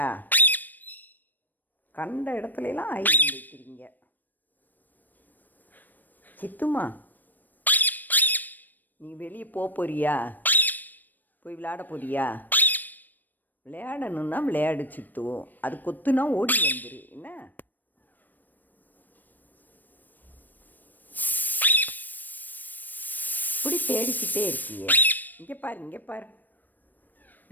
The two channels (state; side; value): late; right; 0.089 ms